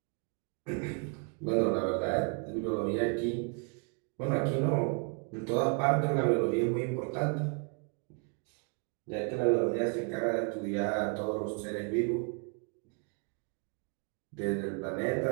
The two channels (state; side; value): quieter; left; 38.1 dB